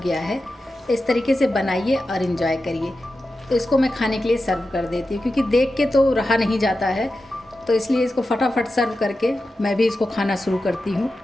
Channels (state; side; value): normal; both; correlation 0.92